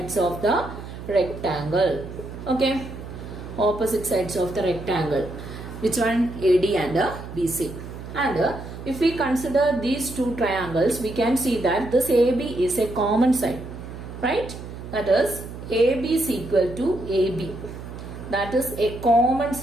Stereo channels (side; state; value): right; noise; hum, 11 dB below the sound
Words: of the rectangle. Okay, opposite sides of the rectangle. Which one? AD and BC. And if we consider these two triangles, we can see that this AB is a common side. Right? That is, AB is equal to AB. That is a common